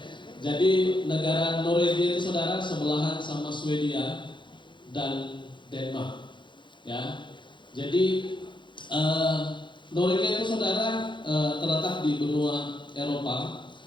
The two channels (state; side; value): late; right; 0.23 ms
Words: jadi negara Norwegia itu, saudara, sebelahan sama Swedia dan Denmark. Ya, jadi Norwegia itu, saudara, terletak di benua Eropa.